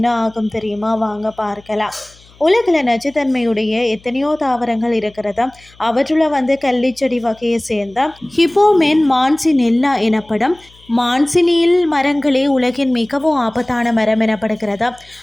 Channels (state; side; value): noise; left; hum, 27 dB below the sound